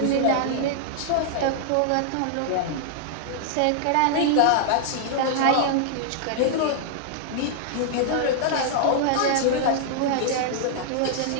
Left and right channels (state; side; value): different; both; correlation -0.01